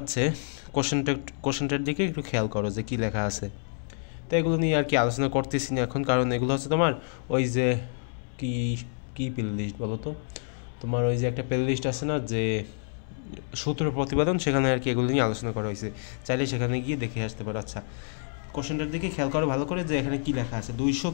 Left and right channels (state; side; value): silent; right; 59 dB below the other